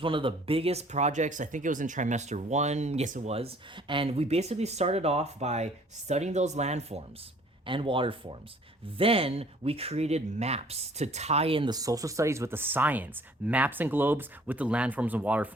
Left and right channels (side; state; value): both; normal; correlation 0.56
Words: one of the biggest projects. I think it was in trimester 1. Yes, it was. And we basically started off by studying those landforms and water forms. Then we created maps to tie in the social studies with the science, maps and globes with the landforms and water